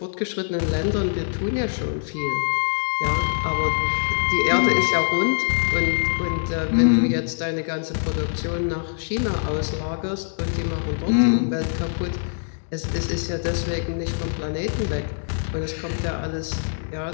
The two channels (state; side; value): silent; right; digital silence